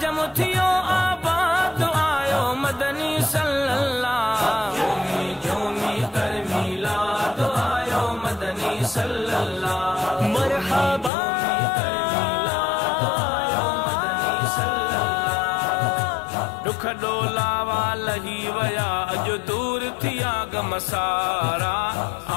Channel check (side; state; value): right; drops out; at 11.1 s